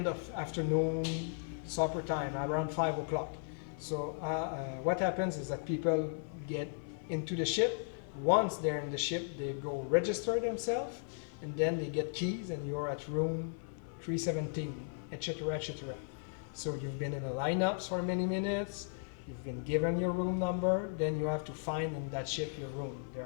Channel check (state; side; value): silent; right; 54 dB below the other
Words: of afternoon, supper time, around 5 o'clock. So what happens is that people get into the ship. Once they're in the ship, they go register themselves, and then they get keys, and you're at room 317, etc., etc. So you've been in the lineups for many minutes. You've been given your room number. Then you have to find in that ship your room. There